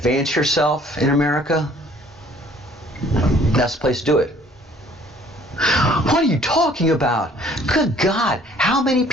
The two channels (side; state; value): both; normal; correlation 0.57